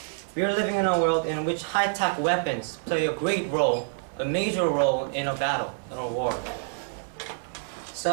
We are living in a world in which high-tech weapons play a great role, a major role in a battle, in a war.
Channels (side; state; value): left; silent; 60 dB below the other